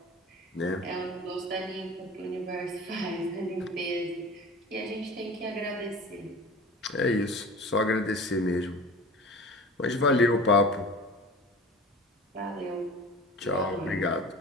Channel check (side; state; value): both; normal; correlation 0.37